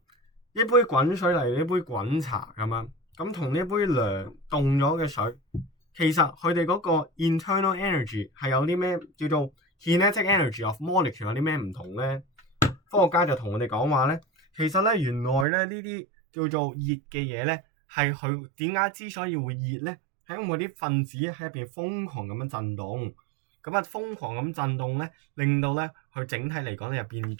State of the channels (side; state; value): left; drops out; at 15.5 s